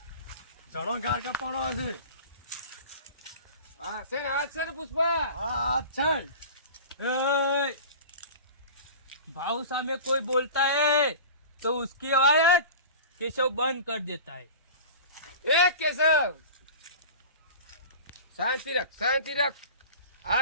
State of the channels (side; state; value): both; inverted; correlation -0.36